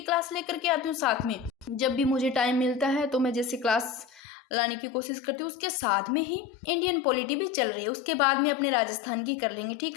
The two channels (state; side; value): drops out; right; at 4.2 s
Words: क्लास लेकर के आती हूँ साथ में। जब भी मुझे टाइम मिलता है तो मैं जैसे क्लास लाने की कोशिश करती हूँ, उसके साथ में ही इंडियन पॉलिटी भी चल रही है, उसके बाद में अपने राजस्थान की कर लेंगे, ठीक